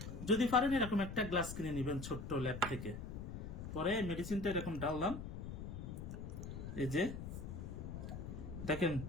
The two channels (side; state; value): left; noise; rumble, 7 dB below the sound